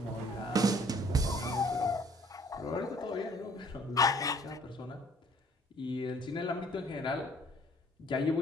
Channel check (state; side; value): normal; both; correlation 0.58